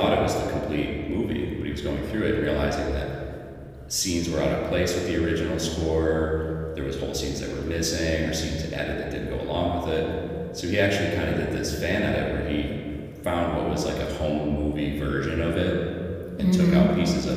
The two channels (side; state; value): both; identical; correlation 1.00